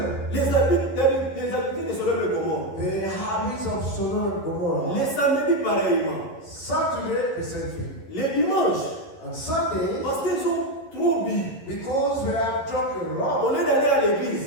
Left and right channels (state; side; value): late; right; 11 ms